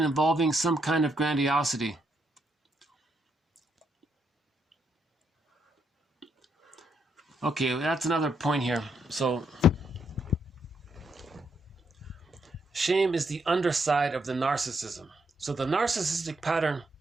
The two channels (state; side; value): normal; both; correlation 0.77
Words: involving some kind of grandiosity. Okay, that's another point here. So, shame is the underside of the narcissism. So the narcissistic pattern